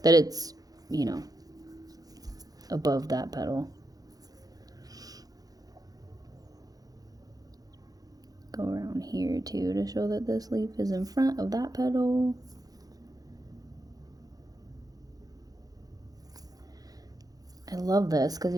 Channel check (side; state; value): left; late; 0.18 ms